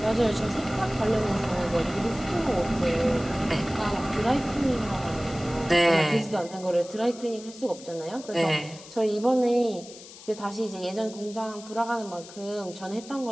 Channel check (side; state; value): left; noise; hiss, 17 dB below the sound